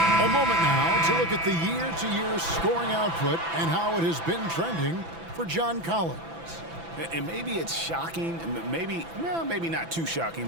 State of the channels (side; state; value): left; late; 6.0 ms